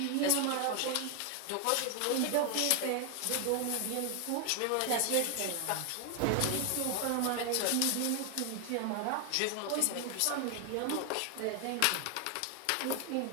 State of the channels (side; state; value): both; different; correlation 0.01